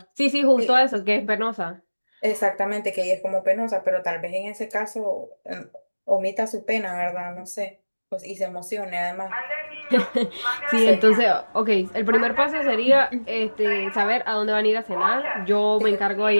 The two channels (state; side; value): inverted; both; correlation -1.00